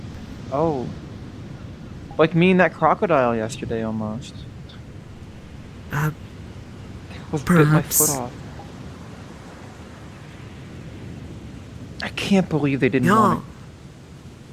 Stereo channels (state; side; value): identical; both; correlation 1.00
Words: Oh, like me and that crocodile yesterday almost. Was bit my foot Perhaps. off. I can't believe they didn't want